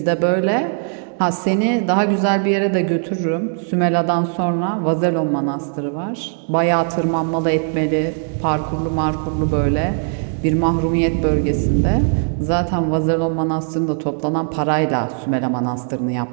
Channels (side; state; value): left; silent; 61 dB below the other